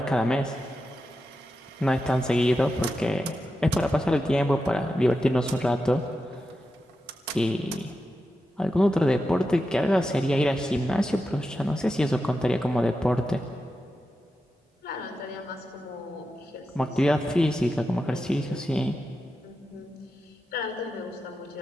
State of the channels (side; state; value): both; normal; correlation 0.89